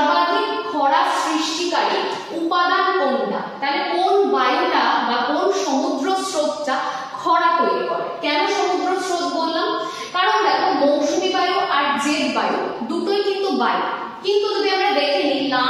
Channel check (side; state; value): both; identical; correlation 1.00